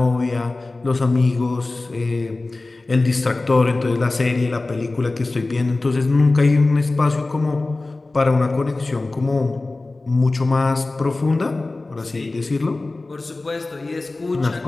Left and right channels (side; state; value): right; quieter; 3.2 dB